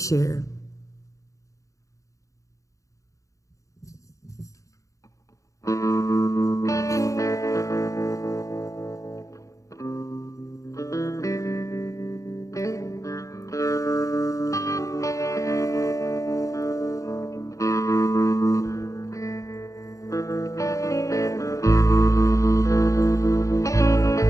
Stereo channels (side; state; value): right; late; 0.16 ms